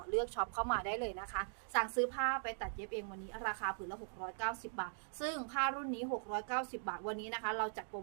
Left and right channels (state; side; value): silent; left; digital silence